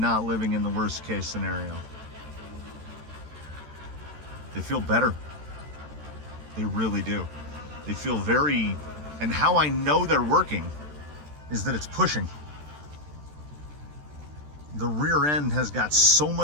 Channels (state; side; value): late; left; 13 ms